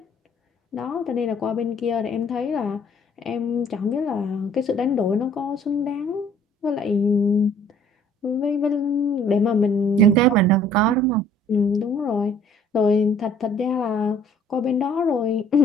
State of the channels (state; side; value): normal; both; correlation 0.56